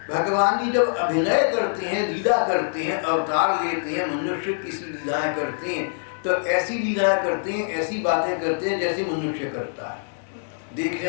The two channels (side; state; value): right; silent; digital silence